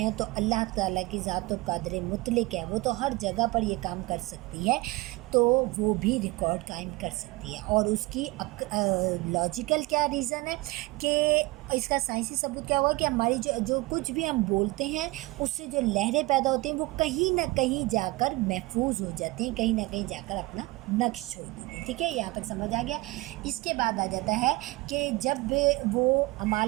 تو اللہ تعالیٰ کی ذات و قادر مطلق ہے، وہ تو ہر جگہ پر یہ کام کر سکتی ہے، تو وہ بھی ریکارڈ قائم کر سکتی ہے. اور اس کی لاجیکل کیا ریزن ہے کہ اس کا سائنسی ثبوت کیا ہوا کہ ہماری جو کچھ بھی ہم بولتے ہیں اس سے جو لہریں پیدا ہوتی ہیں وہ کہیں نہ کہیں جا کر محفوظ ہو جاتی ہیں، کہیں نہ کہیں جا کر اپنا نقش چھوڑ دیتی ہیں. ٹھیک ہے، یہاں تک سمجھ آ گیا. اس کے بعد آ جاتا ہے کہ جب وہ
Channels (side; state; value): left; quieter; 22.1 dB